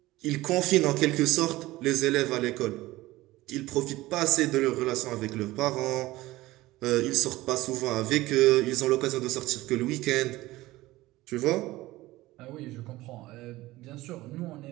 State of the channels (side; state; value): left; quieter; 18.2 dB